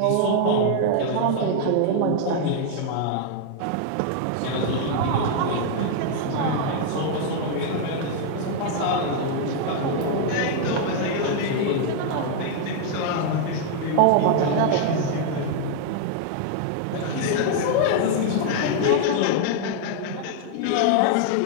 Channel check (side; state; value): both; different; correlation 0.00